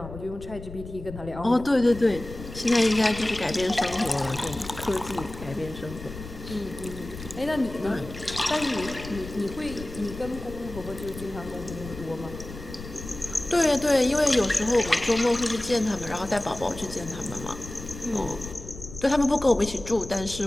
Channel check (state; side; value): noise; left; rumble, 12 dB below the sound